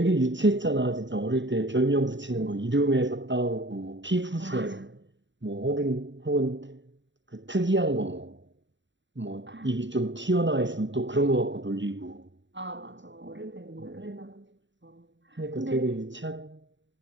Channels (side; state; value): left; late; 0.54 ms